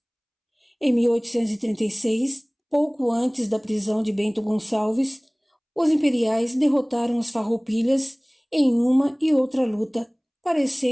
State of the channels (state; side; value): identical; both; correlation 1.00